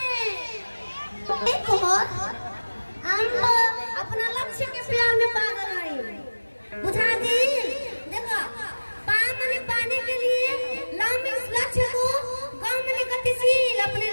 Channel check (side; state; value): both; inverted; correlation -1.00